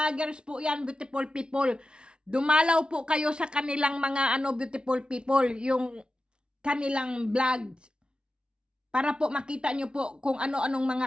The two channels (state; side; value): late; left; 0.055 ms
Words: po yan, beautiful people. Dumalaw po kayo sa kanilang mga beautiful people, yung kanilang vlogs. Para po makita nyo po kung ano-anong